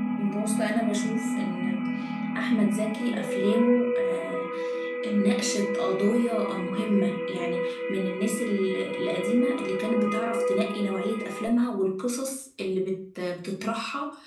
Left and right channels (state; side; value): identical; both; correlation 1.00